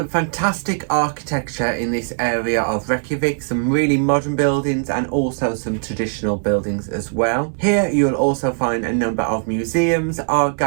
fantastic architecture in this area of Reykjavik, some really modern buildings and also some traditional buildings as well. Here you'll also find a number of museums, art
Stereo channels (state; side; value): silent; left; digital silence